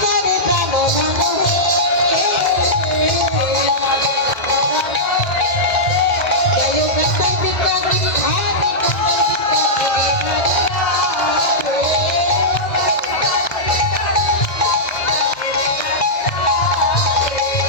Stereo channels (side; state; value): right; late; 1.6 ms